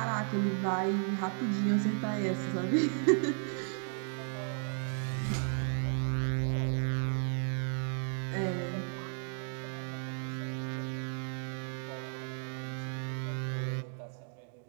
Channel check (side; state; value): left; silent; 55 dB below the other